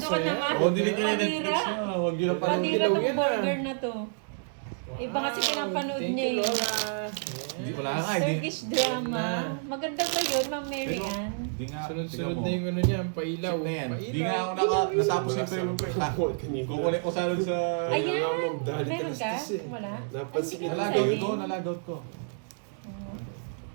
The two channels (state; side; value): silent; left; digital silence